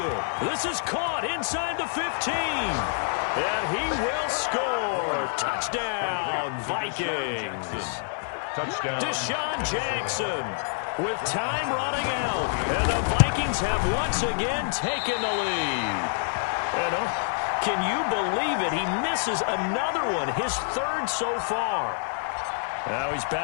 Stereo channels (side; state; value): right; silent; 60 dB below the other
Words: This is caught inside the 15. And he will score. Touchdown, Vikings. Touchdown. Deshaun Jackson with time running out. And the Vikings have once again taken the lead. And can you believe it? He misses another one, his 3rd so far. Now he's